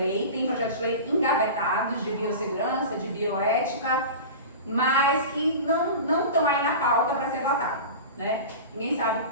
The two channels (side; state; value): both; inverted; correlation -0.32